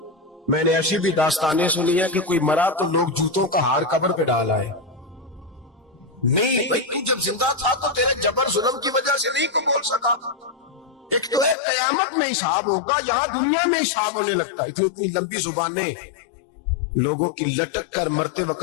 میں نے ایسی بھی داستانیں سنی ہے کہ کوئی مرا تو لوگ جوتوں کا ہار قبر پہ ڈال آئے۔ نہیں بھائی، تو جب زندہ تھا تو تیرے جبر ظلم کی وجہ سے نہیں کو بول سکا۔ ایک تو ہے قیامت میں حساب ہوگا، جہاں دنیا میں حساب ہونے لگتا ہے۔ اتنی لمبی زبانیں لوگوں کی لٹک کر مرتے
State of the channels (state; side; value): drops out; right; at 11.6 s